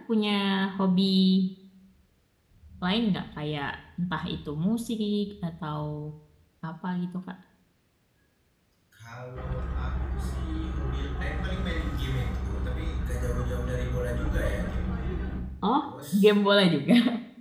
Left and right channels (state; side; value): identical; both; correlation 1.00